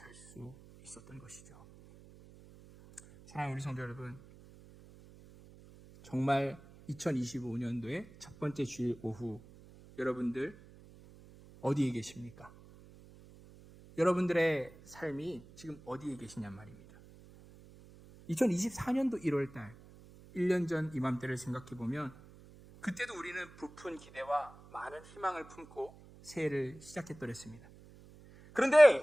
수 있었던 것이죠. 사랑하는 우리 성도 여러분, 정말 2025년도의 첫 번째 주일 오후 여러분들 어디에 계십니까? 여러분들의 삶이 지금 어디에 계시냔 말입니다. 2024년도 1월달 1년 전 이맘때를 생각해보면 그때도 우리는 부푼 기대와 많은 희망을 품고 새해를 시작했더랬습니다.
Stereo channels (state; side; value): noise; right; hum, 21 dB below the sound